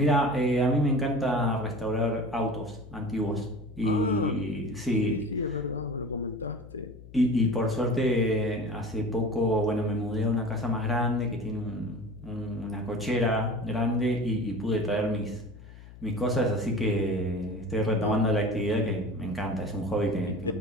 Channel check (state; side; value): noise; left; hum, 18 dB below the sound